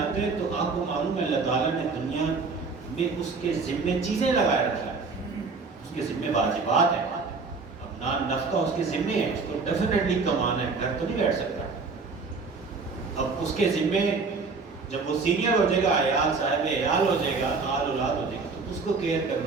ہیں تو آپ کو معلوم ہے اللہ تعالیٰ نے دنیا میں اس کے ذمے چیزیں لگائے رکھی ہیں، اس کے ذمے واجبات ہیں، اپنا نفقہ اس کے ذمے ہے، اس کو ڈیفینیٹلی کمانا ہے، گھر تو نہیں بیٹھ سکتا۔ اب اس کے ذمے جب وہ سینئر ہو جائے گا، عیال صاحب عیال ہو جائے گا، آل اولاد ہو جائے گا، تو اس کو کیئر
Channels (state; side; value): quieter; left; 4.4 dB